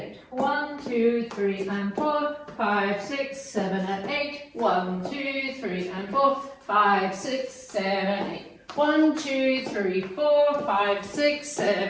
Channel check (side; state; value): both; identical; correlation 1.00